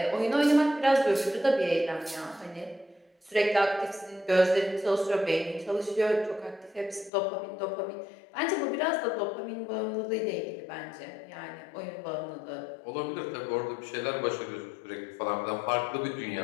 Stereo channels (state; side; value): drops out; right; at 7.1 s